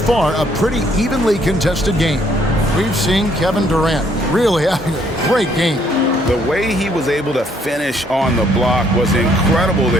a pretty evenly contested game. We've seen Kevin Durant really having a great game. The way he was able to finish on the block was incredible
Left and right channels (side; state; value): both; normal; correlation 0.67